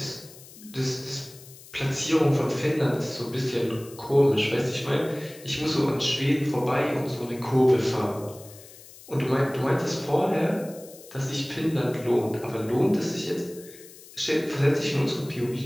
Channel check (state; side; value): noise; left; hiss, 20 dB below the sound